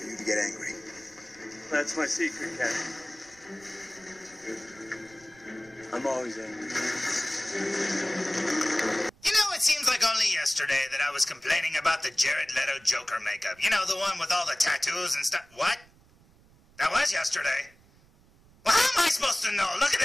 you to get angry. That's my secret, Cat. I'm always angry. You know, it seems like only yesterday that I was complaining about the Jared Leto Joker makeup. You know, the one with all the tattoos and stuff. What? That was yesterday. Well, how am I supposed to know? Look at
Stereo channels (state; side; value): noise; right; rumble, 28 dB below the sound